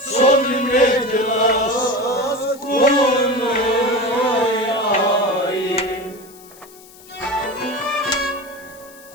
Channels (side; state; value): left; noise; hiss, 22 dB below the sound